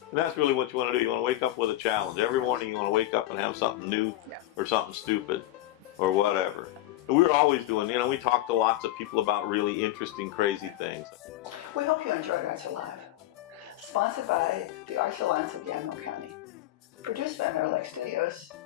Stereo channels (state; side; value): quieter; right; 15.1 dB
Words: And that's really what you want to do. You want to wake up with a challenge. Every morning you want to wake up and have something new or something stupid or whatever. We were always doing, you know, we talked to lots of people about really interesting, crazy things. We hope you enjoyed Arts Alive. Sponsored by the Arts Alliance of Yamhill County. Produced by Meadowlake Studios.